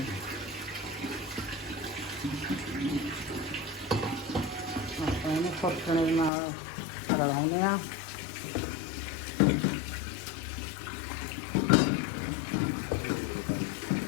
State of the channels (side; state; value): right; drops out; at 6.3 s